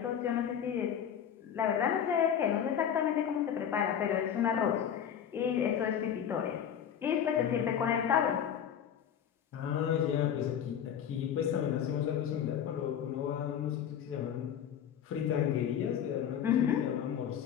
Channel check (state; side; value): quieter; right; 8.9 dB